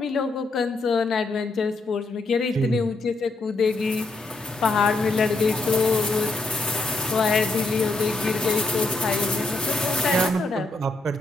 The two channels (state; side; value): quieter; right; 3.1 dB